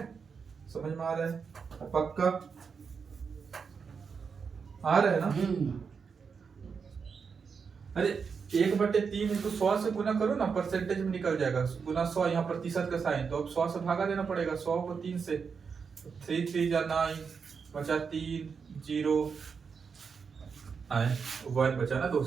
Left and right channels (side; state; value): left; quieter; 5.8 dB